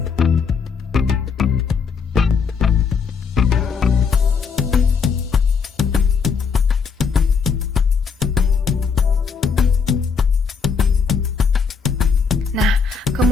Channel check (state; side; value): quieter; right; 5.7 dB